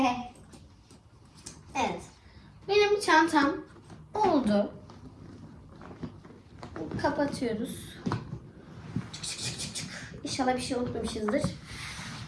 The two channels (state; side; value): identical; both; correlation 1.00